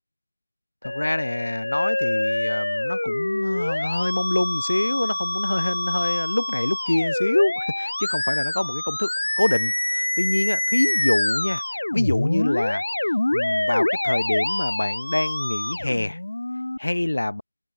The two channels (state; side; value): inverted; both; correlation -1.00